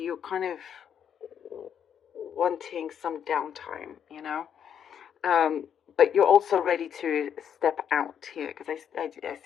kind of wanting some downtime, but you're also ready to step out here, because I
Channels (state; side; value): quieter; right; 8.5 dB